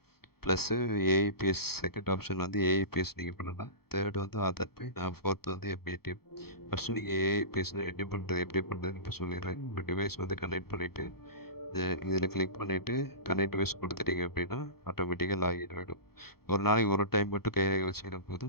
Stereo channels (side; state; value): right; late; 0.96 ms